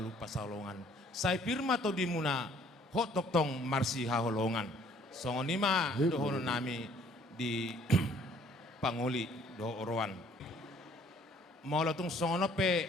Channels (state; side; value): normal; both; correlation 0.59